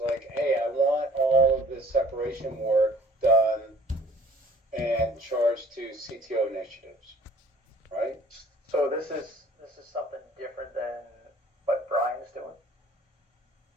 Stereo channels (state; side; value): normal; both; correlation 0.54